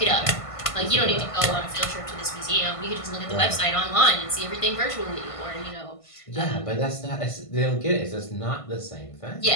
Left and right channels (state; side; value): late; right; 1.5 ms